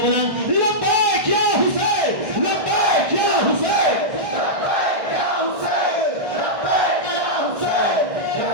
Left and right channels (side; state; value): left; late; 1.6 ms